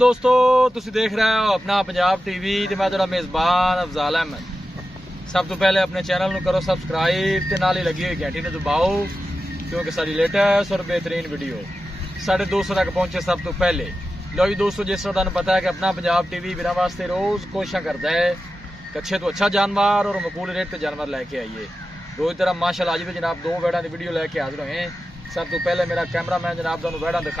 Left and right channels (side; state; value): both; normal; correlation 0.92